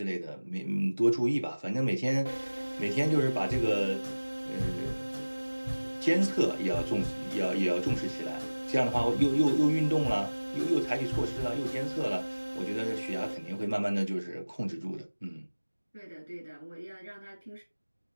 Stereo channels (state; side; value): inverted; both; correlation -1.00